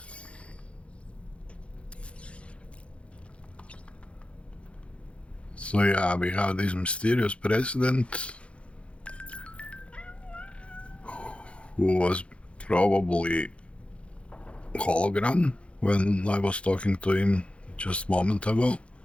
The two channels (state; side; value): late; right; 0.060 ms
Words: So yeah, we have this mysterious president who was probably hologram when I was talking to him just a moment ago,